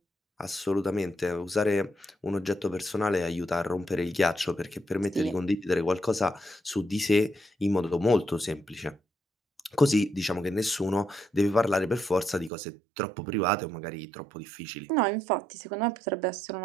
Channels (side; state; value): left; drops out; at 12.5 s